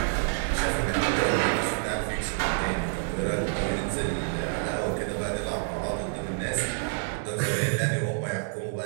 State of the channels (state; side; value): silent; left; digital silence